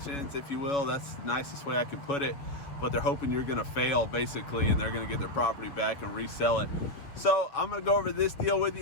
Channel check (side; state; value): right; late; 6.9 ms